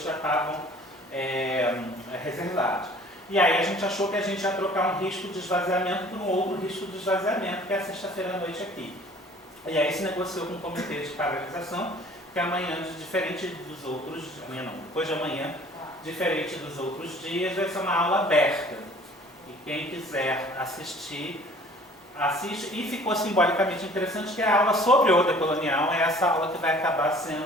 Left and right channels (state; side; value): normal; both; correlation 0.51